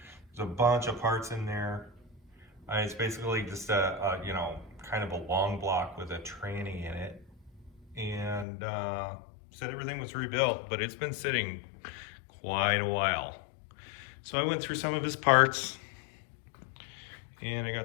There's a bunch of parts in there. It's basically just a kind of a long block with a tranny in it. And said everything was rebuilt, but it's been sitting quite a while. So I went through some of his parts, and I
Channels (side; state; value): right; drops out; at 8.5 s